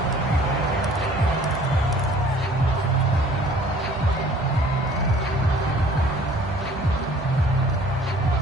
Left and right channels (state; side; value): normal; both; correlation 0.53